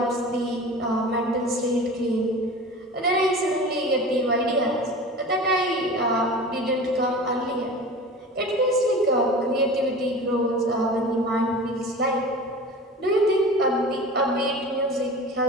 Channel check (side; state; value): both; normal; correlation 0.36